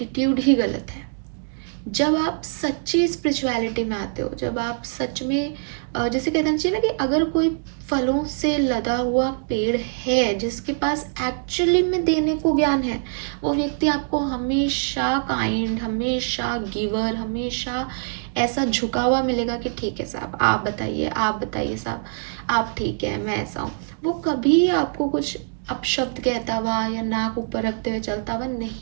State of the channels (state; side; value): silent; left; digital silence